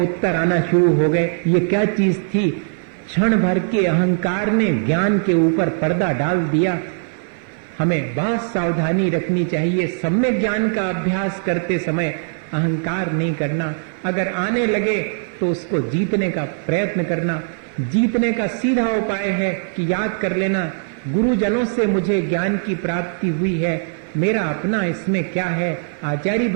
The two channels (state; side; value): silent; left; 57 dB below the other